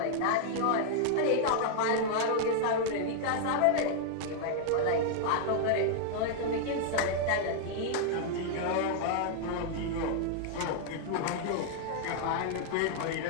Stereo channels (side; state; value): both; different; correlation -0.01